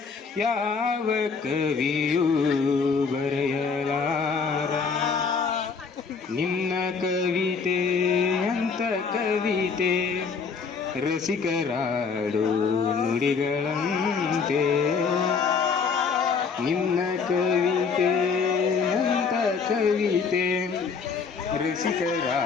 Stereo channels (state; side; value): quieter; right; 5.4 dB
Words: ಯಾವ ಕವಿಯೂ ಬರೆಯಲಾರ. ನಿನ್ನ ಕವಿತೆ ಅಂತ ಕವಿತೆ ರಸಿಕರಾಡು ನುಡಿಗಳಂತೆ. ನಿನ್ನ ಕವಿತೆ ಅಂತ ಕವಿತೆ